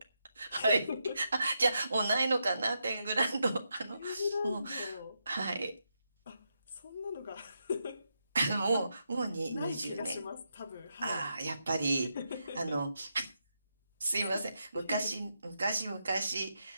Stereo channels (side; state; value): both; inverted; correlation -0.84